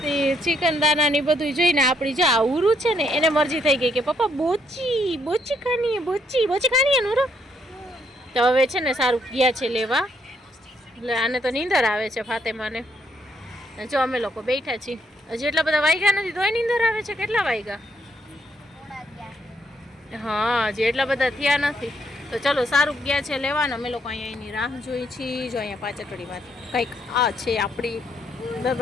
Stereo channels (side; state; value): both; normal; correlation 0.73